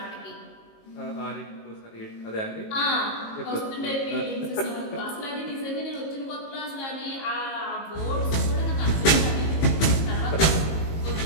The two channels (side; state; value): right; late; 18 ms